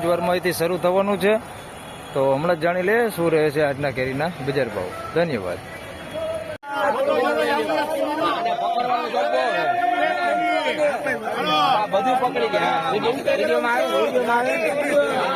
જ વારમાં અહીંથી શરૂ થવાનું છે, તો હમણાં જ જાણી લઈએ શું રહે છે આજના કેરીના બજાર ભાવ. ધન્યવાદ. બધું પકડી ગયા વિડીયોમાં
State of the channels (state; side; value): identical; both; correlation 1.00